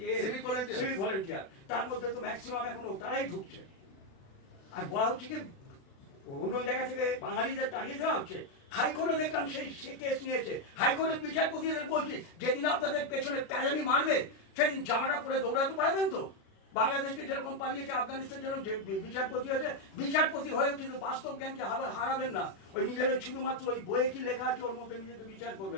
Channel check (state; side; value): late; right; 36 ms